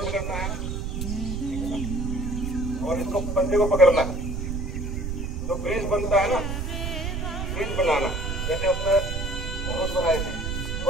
करना है, ठीक है ना, और इसको पंजे को पकड़ना है। जो ब्रिज बनता है ना, ब्रिज बनाना जैसे अपने धनुष बनाए थे,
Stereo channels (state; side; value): noise; right; rumble, 3 dB below the sound